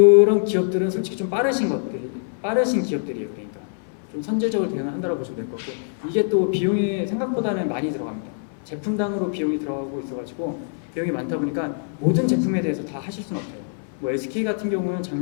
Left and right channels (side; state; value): right; silent; digital silence